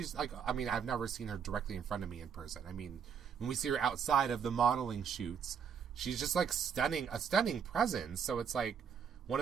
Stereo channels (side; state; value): left; quieter; 7.1 dB